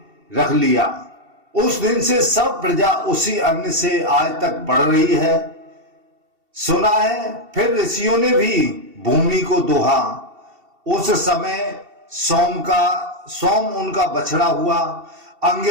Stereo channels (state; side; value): late; left; 2.7 ms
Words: रख लिया। उस दिन से सब प्रजा उसी अन्न से आज तक बढ़ रही है। सुना है फिर ऋषियों ने भी भूमि को दोहा। उस समय सोम उनका बछड़ा हुआ।